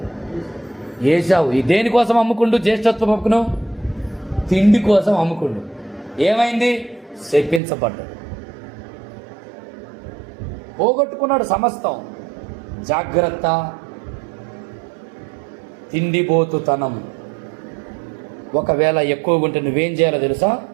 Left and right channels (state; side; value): drops out; left; at 7.6 s